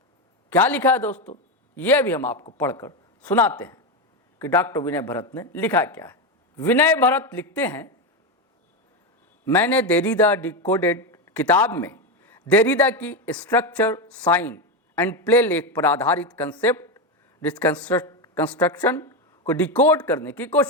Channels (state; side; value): normal; both; correlation 0.11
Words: क्या लिखा है दोस्तों, यह भी हम आपको पढ़कर सुनाते हैं कि डॉक्टर विनय भरत ने लिखा क्या है। विनय भरत लिखते हैं, मैंने देरीदा डिकोडेड किताब में देरीदा की स्ट्रक्चर, साइन एंड प्ले लेख पर आधारित कंसेप्ट कंस्ट्रक्शन को डिकोड करने की